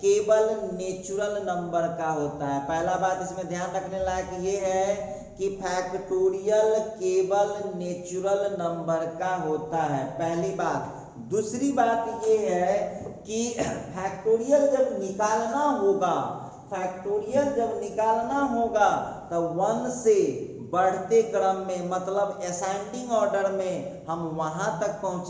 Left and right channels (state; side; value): identical; both; correlation 1.00